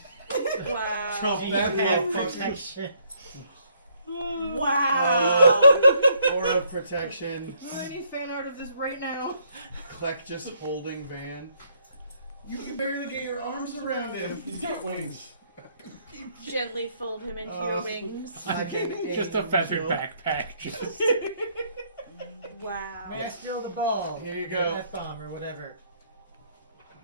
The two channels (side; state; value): both; inverted; correlation -0.68